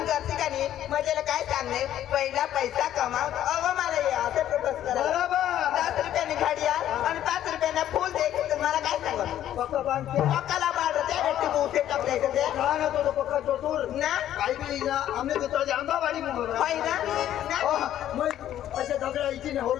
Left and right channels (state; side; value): quieter; right; 11.7 dB